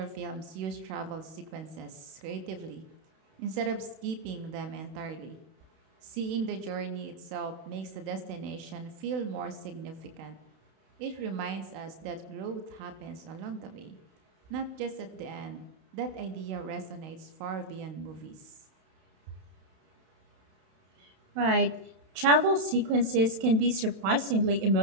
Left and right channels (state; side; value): late; left; 32 ms